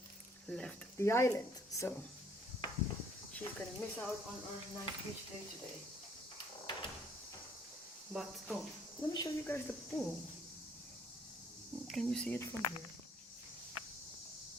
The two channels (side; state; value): both; normal; correlation 0.62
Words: left the island. So she's gonna miss out on our nice beach day today. But let me show you guys the pool. Can you see it from here?